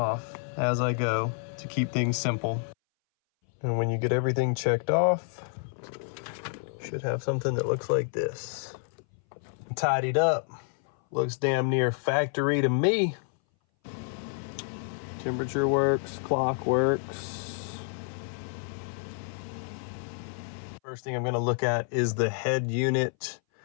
as I go to keep things simple. And when you get everything checked off, you should have something that looks like this. Tidied up, looks damn near factory to me. Temperature works, clock works. First thing I'm gonna look at is the head unit.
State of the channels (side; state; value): right; silent; 59 dB below the other